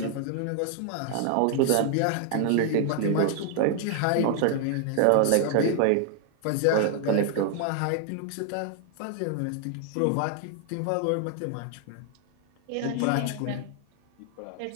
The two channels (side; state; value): both; different; correlation 0.00